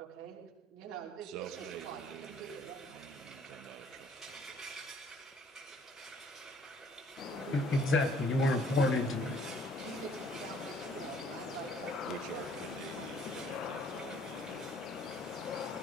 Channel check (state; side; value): normal; both; correlation 0.60